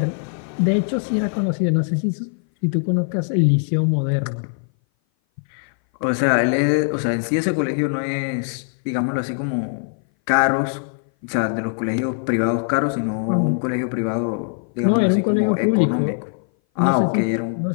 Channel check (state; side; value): silent; right; 58 dB below the other